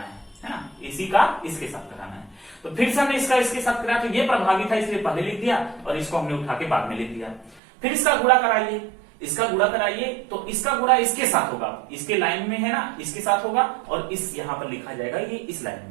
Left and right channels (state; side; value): drops out; left; at 7.6 s